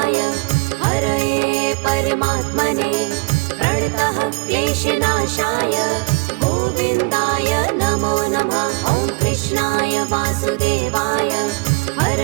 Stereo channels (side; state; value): left; quieter; 28.1 dB